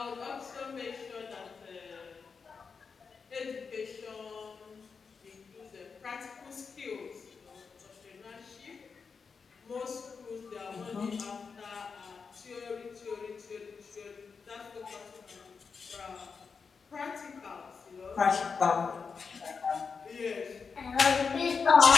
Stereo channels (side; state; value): right; quieter; 5.4 dB